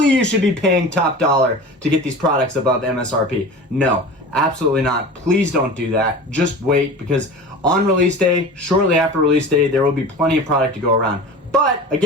you should be paying top dollar to get these products above MSRP. No, absolutely not. Please don't do that. Just wait, because on release day, shortly after release day, there will be plenty of product to go around. But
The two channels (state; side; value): normal; both; correlation 0.35